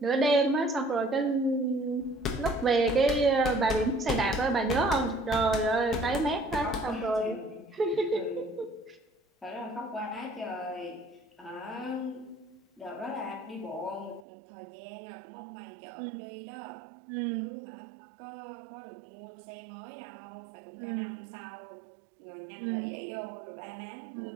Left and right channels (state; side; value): drops out; left; at 14.2 s